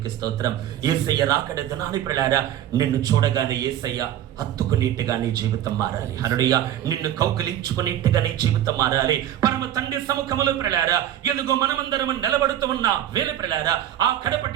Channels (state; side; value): quieter; left; 11.6 dB